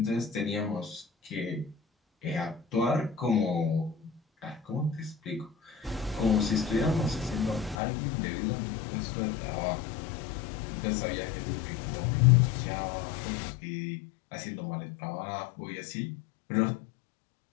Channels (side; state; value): right; drops out; at 7.8 s